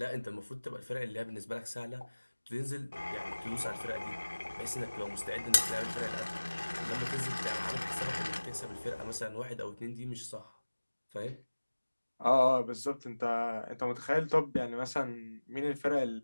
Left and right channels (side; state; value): both; inverted; correlation -1.00